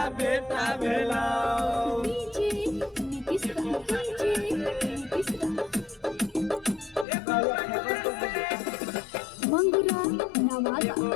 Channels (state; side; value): drops out; right; at 7.1 s